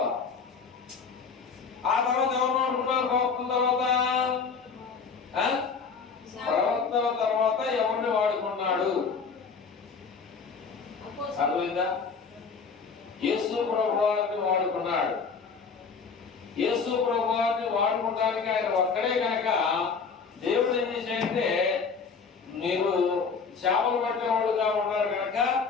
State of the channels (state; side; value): quieter; right; 5.4 dB